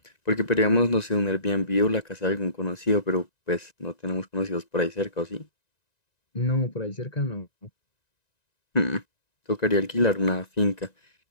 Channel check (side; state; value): right; late; 1.9 ms